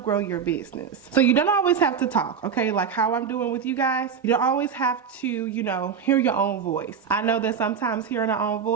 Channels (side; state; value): left; quieter; 7.0 dB